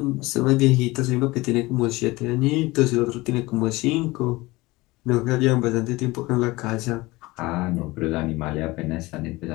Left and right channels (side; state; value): right; quieter; 21.2 dB